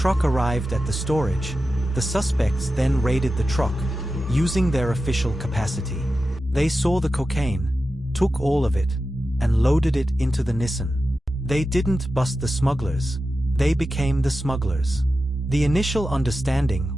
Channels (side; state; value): both; normal; correlation 0.92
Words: arrived at the storage, the suspects then raided the truck, using their official capacity. They saw the cocaine, took all of it, and loaded it into the Nissan. They didn't bust the smugglers, they became the smugglers. The initial understanding